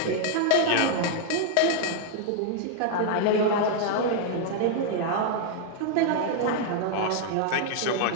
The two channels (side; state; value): both; different; correlation 0.00